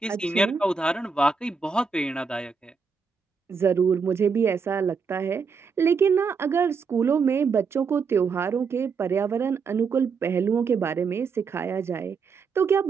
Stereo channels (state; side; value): quieter; left; 5.4 dB